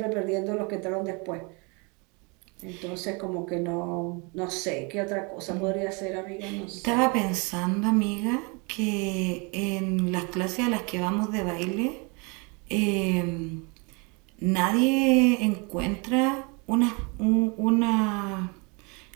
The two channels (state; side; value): quieter; left; 31.0 dB